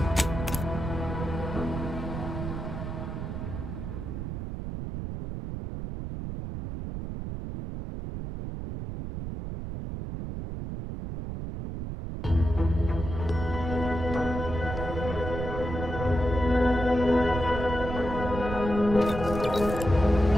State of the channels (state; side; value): noise; right; rumble, 6 dB below the sound